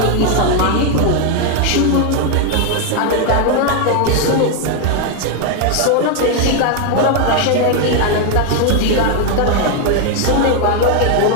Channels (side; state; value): both; different; correlation 0.01